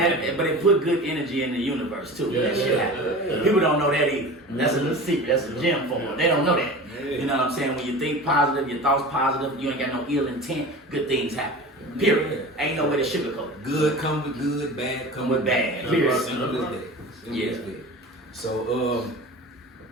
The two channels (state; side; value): normal; both; correlation 0.35